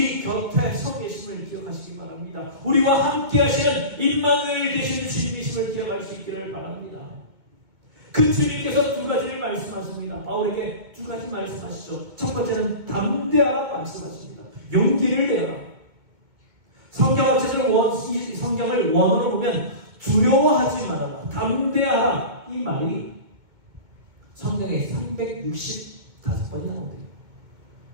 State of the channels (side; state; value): left; late; 2.1 ms